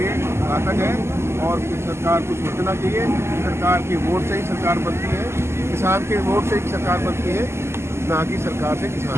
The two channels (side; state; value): left; late; 0.12 ms